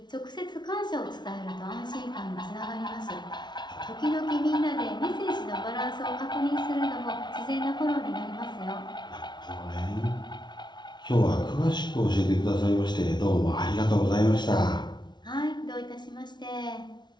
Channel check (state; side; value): late; right; 0.21 ms